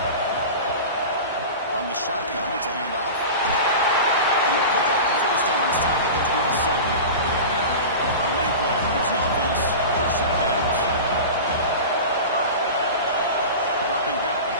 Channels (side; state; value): both; inverted; correlation -0.30